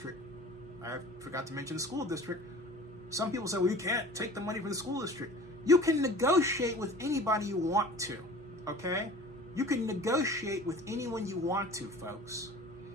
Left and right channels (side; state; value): both; normal; correlation 0.43